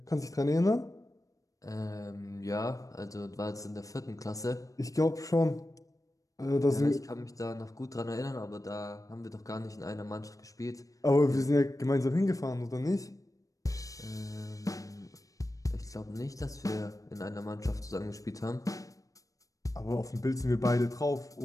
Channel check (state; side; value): late; right; 0.16 ms